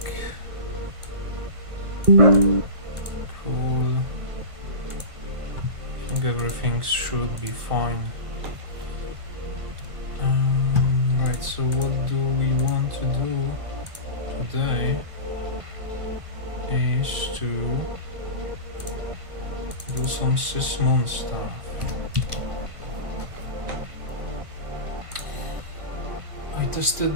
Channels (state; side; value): late; left; 1.5 ms